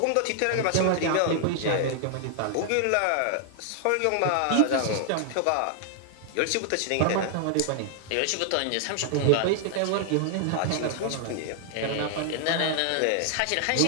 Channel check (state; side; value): different; both; correlation 0.00